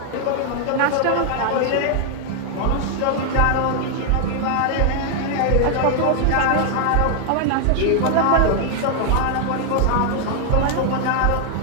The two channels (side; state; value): both; different; correlation 0.00